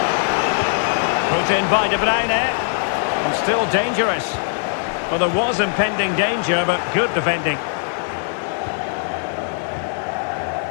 Put in by De Bruyne. And still dangerous. Well, there was impending danger, but good defending.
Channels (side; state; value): right; silent; 57 dB below the other